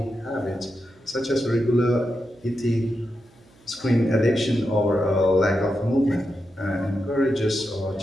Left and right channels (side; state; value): right; noise; hum, 29 dB below the sound